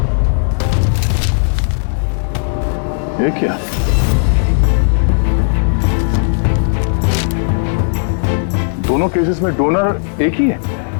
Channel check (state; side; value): silent; right; digital silence